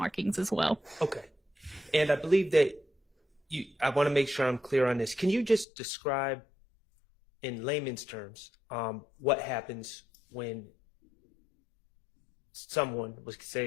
as well. Okay. And I believe that I want to make sure I'm clear on this. Can you just describe in layman's terms what happens when someone was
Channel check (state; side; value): drops out; right; at 5.7 s